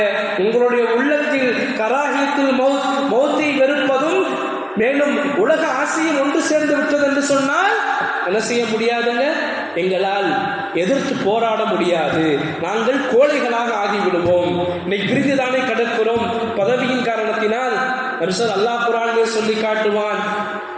உங்களுடைய உள்ளத்தில் கராஹியத்துல் மௌத்தை வெறுப்பதும் மேலும் உலக ஆசையும் ஒன்று சேர்ந்து விட்டது என்று சொன்னால் என்ன செய்ய முடியாதுங்க? எங்களால் எதிர்த்து போராட முடியாது. நாங்கள் கோழைகளாக ஆகிவிடுவோம். இன்னைக்கு பிரிந்துதானே கிடக்கிறோம் பதவியின் காரணத்தினால். அல்லாஹ் குர்ஆனிலே சொல்லி காட்டுவான்,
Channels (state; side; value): identical; both; correlation 1.00